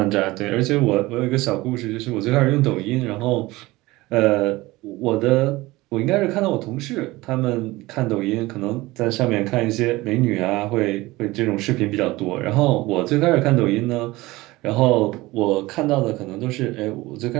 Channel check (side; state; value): left; quieter; 19.9 dB